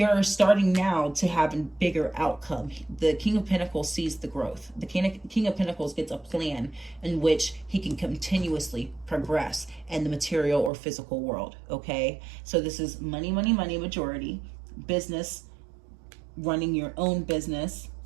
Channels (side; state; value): left; drops out; at 10.7 s